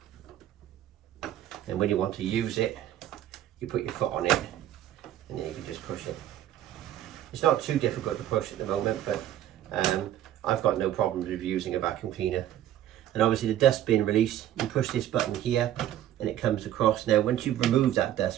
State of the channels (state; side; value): quieter; left; 12.0 dB